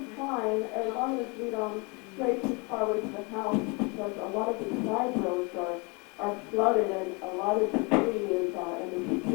fine as long as we don't stray too far away from the house, because a lot of the side roads are flooded and a lot of debris is in the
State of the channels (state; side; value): quieter; right; 30.0 dB